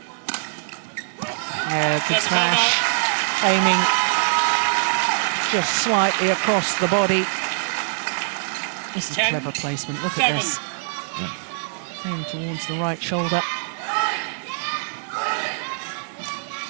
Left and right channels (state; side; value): silent; left; 58 dB below the other